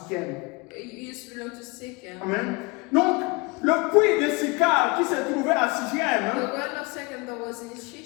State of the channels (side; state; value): right; quieter; 27.4 dB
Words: It used to belong to Sychar. Amen. Donc, le puits de Sychar qui se trouvait à Sichem The well of Sychar that was in Shechem